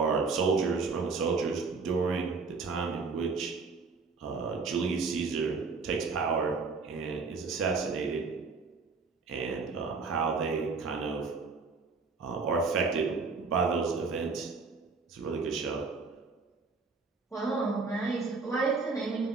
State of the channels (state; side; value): quieter; left; 4.5 dB